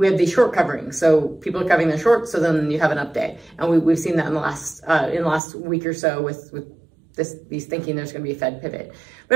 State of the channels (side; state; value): left; drops out; at 5.4 s